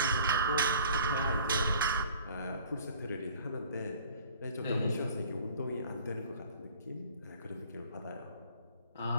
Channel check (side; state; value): both; inverted; correlation -0.49